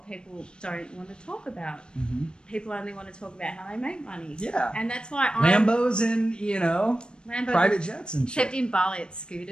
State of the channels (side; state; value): right; late; 0.052 ms